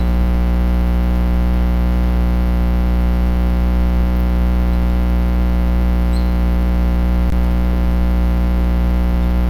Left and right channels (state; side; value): identical; both; correlation 1.00